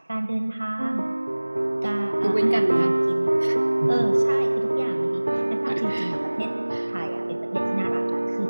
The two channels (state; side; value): inverted; both; correlation -1.00